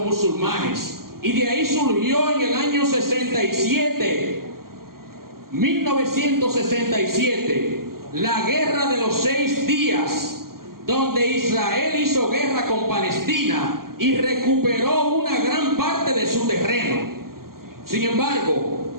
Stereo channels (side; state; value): left; late; 0.92 ms